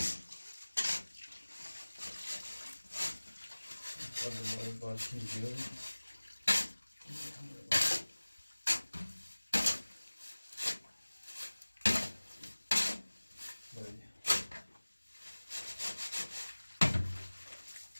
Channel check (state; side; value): inverted; both; correlation -1.00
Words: Adımları bakayım diyorum. Böyle.